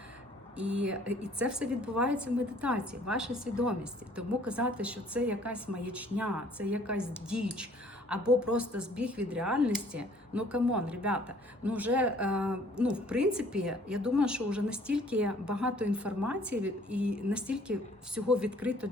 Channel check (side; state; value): both; normal; correlation 0.57